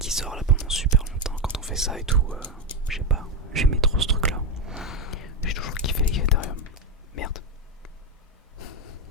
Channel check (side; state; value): both; normal; correlation 0.10